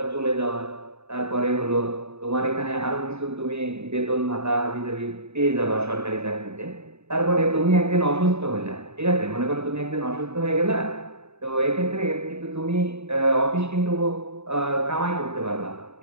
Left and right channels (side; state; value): left; late; 0.80 ms